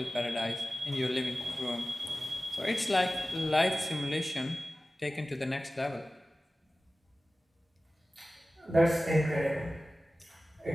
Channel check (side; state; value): both; normal; correlation 0.96